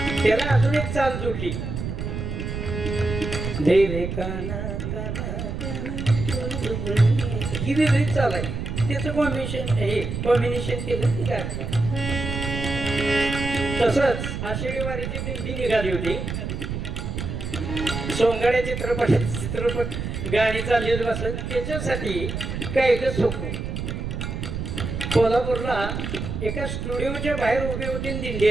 त्याला अजून एक चाल जोडली धेरे काना ही वेगळी चाल आहे. त्याचं कॉम्बिनेशन केलं ती गाणं. तसंच आषाढी वारीची दिंडी निघाली होती. सोंगाड्या चित्रपट गाणी चालली होती बसत. त्याच्यासाठी काही सोपं कोल्हापूरला एका स्टुडिओच्या बाहेर उभी होती आणि दिंडी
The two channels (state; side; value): noise; right; rumble, 4 dB below the sound